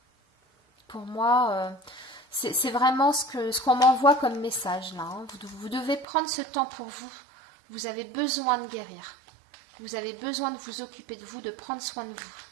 Pour moi, c'est vraiment ce qu'on m'envoie comme message là. Hein. Vous devez prendre ce temps pour vous. Vous avez besoin de guérir. Vous avez besoin de vous occuper de vous, de prendre soin de vous.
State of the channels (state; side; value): drops out; left; at 6.1 s